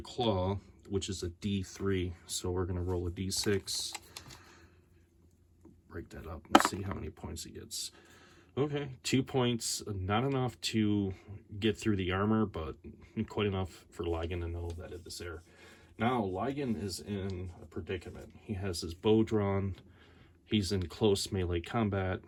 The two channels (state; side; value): identical; both; correlation 1.00